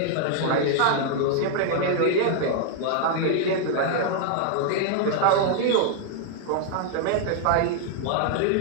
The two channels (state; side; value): different; both; correlation 0.00